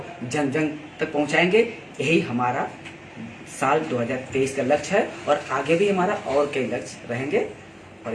जन जन तक पहुंचाएंगे। यही हमारा साल 2023 का लक्ष्य है और आगे भी हमारा और कई लक्ष्य रहेंगे। और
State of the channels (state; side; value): identical; both; correlation 1.00